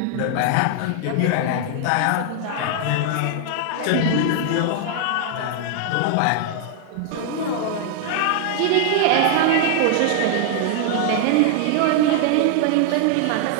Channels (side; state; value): both; different; correlation 0.00